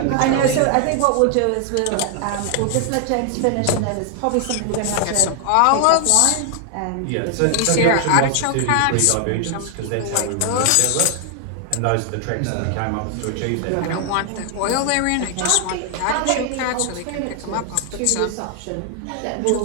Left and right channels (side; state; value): both; different; correlation 0.00